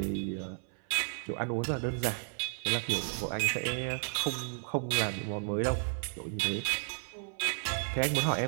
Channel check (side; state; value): left; silent; 56 dB below the other